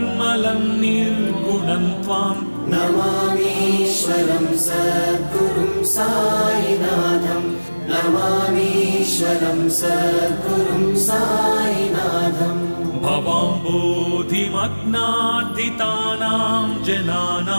निर्गुणं त्वां नमामीश्वरं सद्गुरुं साईनाथं नमामीश्वरं सद्गुरुं साईनाथम् भवाम्बोधिमग्नार्दितानां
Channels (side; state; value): both; inverted; correlation -1.00